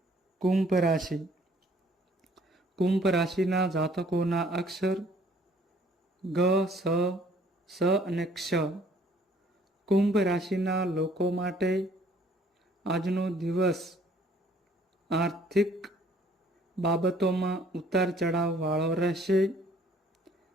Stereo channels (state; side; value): normal; both; correlation 0.59